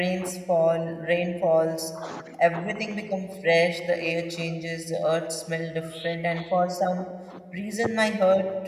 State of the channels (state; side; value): identical; both; correlation 1.00